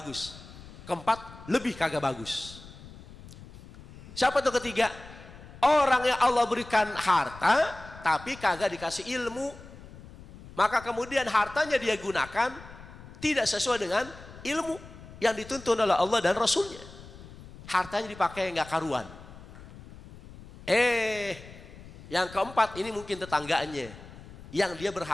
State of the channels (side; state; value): left; noise; rumble, 17 dB below the sound